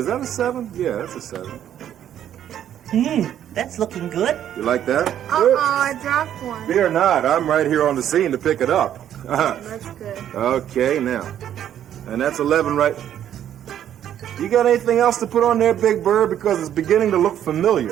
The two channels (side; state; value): left; quieter; 10.5 dB